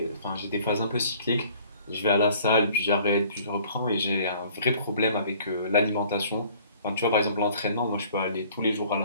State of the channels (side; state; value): both; inverted; correlation -0.54